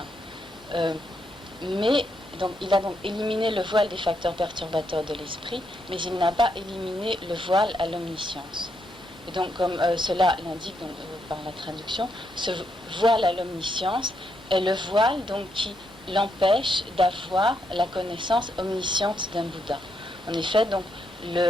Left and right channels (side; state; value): both; normal; correlation 0.79